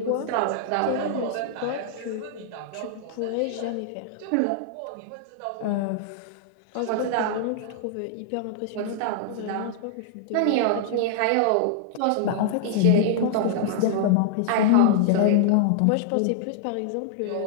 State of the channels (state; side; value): different; both; correlation -0.01